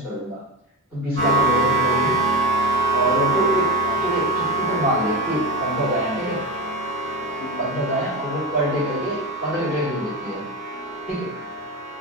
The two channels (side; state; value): both; normal; correlation 0.20